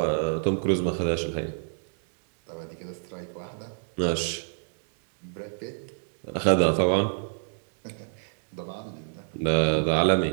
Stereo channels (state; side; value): silent; left; digital silence